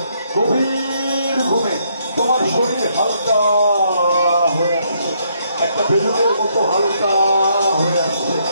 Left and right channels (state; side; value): inverted; both; correlation -0.73